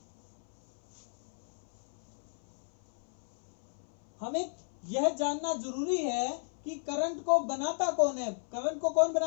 हमें यह जानना जरूरी है कि करंट को बनाता कौन है। करंट को कौन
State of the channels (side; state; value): right; silent; 55 dB below the other